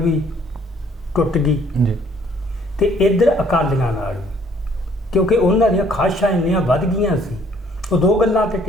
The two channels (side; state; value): both; normal; correlation 0.62